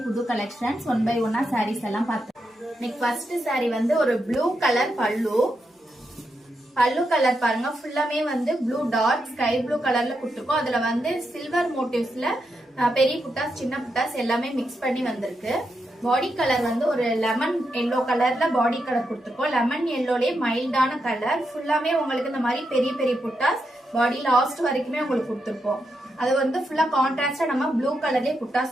புது collections 1 by 1 sarees எல்லாம் பார்த்தோம். இன்னைக்கு first saree வந்து ஒரு blue color பல்லு கலர் பாருங்க, ஃபுல்லாமே வந்து blue dot sky blue கலர்ல கொடுத்திருக்கோம். அதுல வந்து silver motifsல பெரிய புட்டாஸ் சின்ன புட்டாஸ் எல்லாமே mix பண்ணி வந்திருக்கு. பாடி கலர் வந்து ஒரு லெமன் எல்லோ கலர்ல பாடி கலர் கொடுத்திருக்கோம். லெமன் எல்லோலயே மைல்டான கலர், ஃபுல்லாமே உங்களுக்கு இந்த மாதிரி பெரிய பெரிய புட்டாஸ் பாடி லாஸ்ட் வரைக்குமே உங்களுக்கு கொடுத்திருக்கோம். அது வந்து ஃபுல்லா கான்ட்ராஸ்டா நம்ம ப்ளூ கலர்லயே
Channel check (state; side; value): normal; both; correlation 0.84